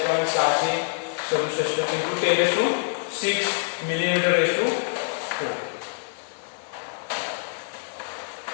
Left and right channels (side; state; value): right; silent; digital silence